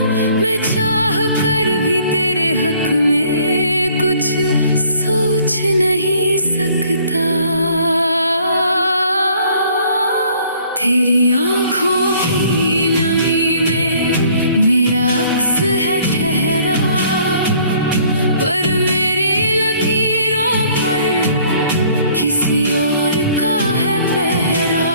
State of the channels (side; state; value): both; inverted; correlation -0.58